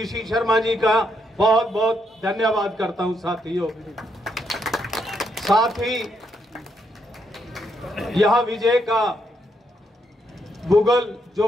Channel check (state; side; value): normal; both; correlation 0.77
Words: शर्मा जी का बहुत बहुत धन्यवाद करता हूं। साथियों, साथ ही यह विजय का भूगोल जो